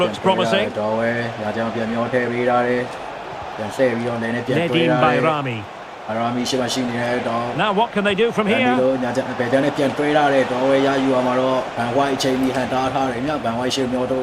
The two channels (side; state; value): both; identical; correlation 1.00